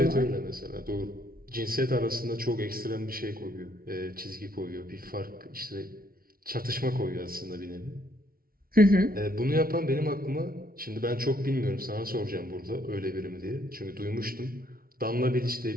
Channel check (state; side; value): late; left; 0.43 ms